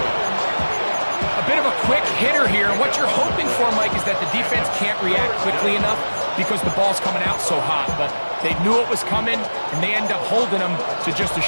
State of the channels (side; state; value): both; inverted; correlation -1.00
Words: A bit of a quick hitter here. And what you're hoping for, Mike, is that the defense can't react quickly enough because the ball's coming out so hot. But they knew it was coming, and they end up holding them to just a